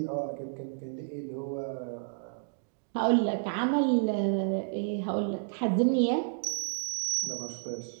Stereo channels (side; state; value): left; silent; digital silence